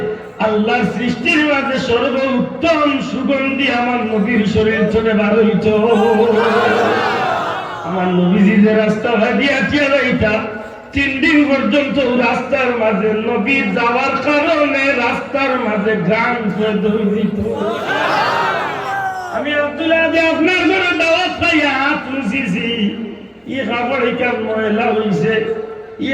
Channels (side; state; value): both; identical; correlation 1.00